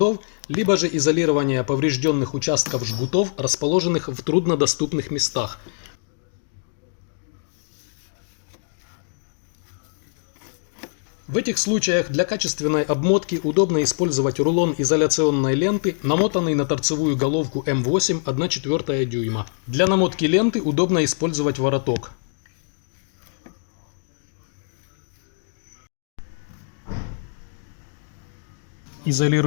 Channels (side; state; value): right; silent; 63 dB below the other